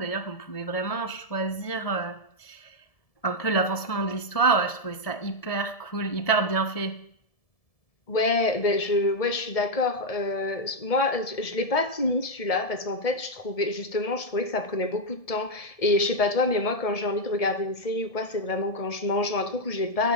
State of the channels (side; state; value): right; late; 1.7 ms